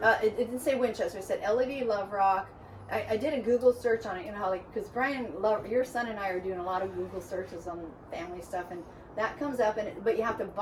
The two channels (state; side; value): identical; both; correlation 1.00